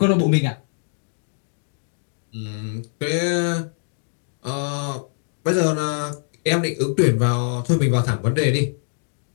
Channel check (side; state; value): right; silent; digital silence